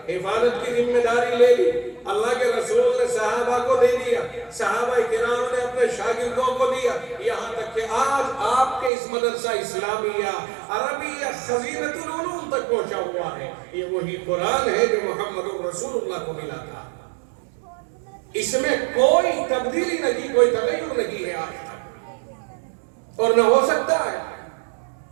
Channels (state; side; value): drops out; left; at 8.9 s